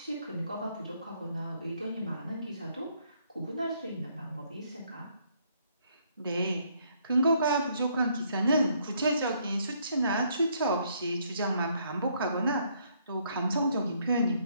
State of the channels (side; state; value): both; inverted; correlation -0.69